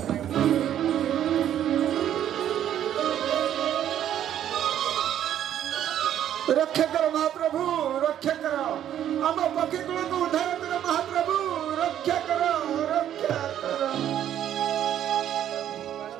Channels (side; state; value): left; quieter; 10.7 dB